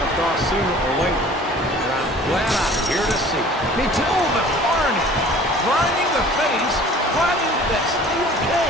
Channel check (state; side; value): normal; both; correlation 0.48